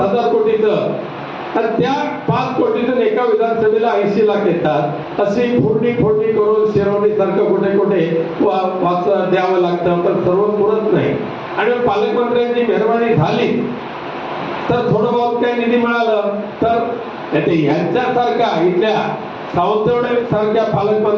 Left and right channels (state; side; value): identical; both; correlation 1.00